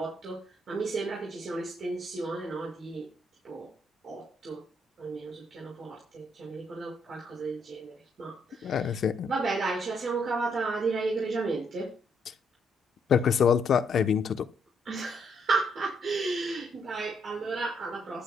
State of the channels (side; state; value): both; normal; correlation 0.73